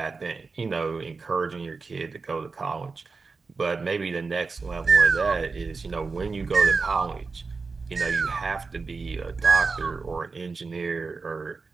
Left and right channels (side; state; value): left; quieter; 4.4 dB